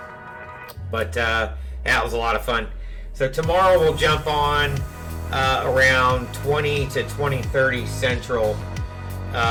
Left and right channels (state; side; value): identical; both; correlation 1.00